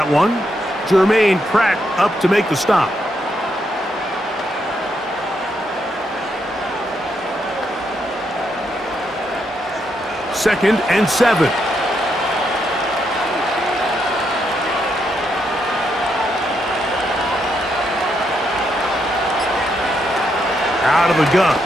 one. Jermaine Pratt up to make the stop. Second and 7. Out of the gun.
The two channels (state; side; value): normal; both; correlation 0.79